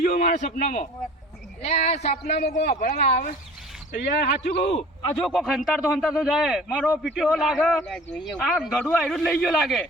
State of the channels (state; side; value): normal; both; correlation 0.45